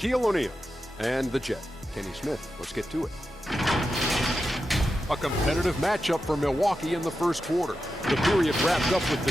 O'Neal and the Jet, Kenny Smith. Let's get to it. A competitive matchup for Milwaukee in the first quarter. The period wrapped up with the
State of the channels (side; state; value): both; normal; correlation 0.90